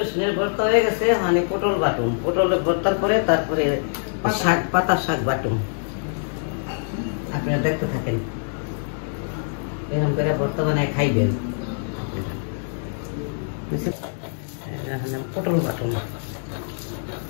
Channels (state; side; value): silent; right; digital silence